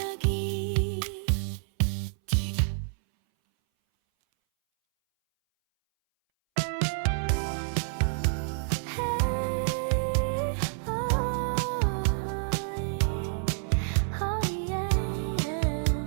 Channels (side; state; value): left; silent; 59 dB below the other